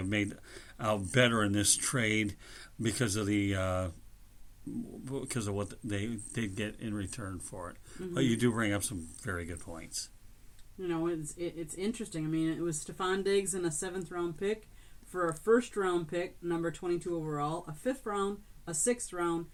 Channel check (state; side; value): identical; both; correlation 1.00